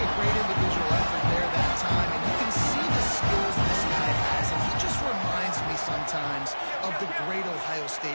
great individual effort there that time, and you can see the skills this guy has, and he just reminds me sometimes of the great Ohio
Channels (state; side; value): inverted; both; correlation -1.00